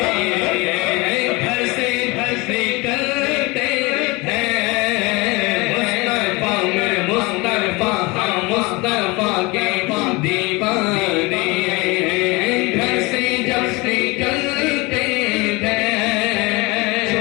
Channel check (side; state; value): right; quieter; 24.8 dB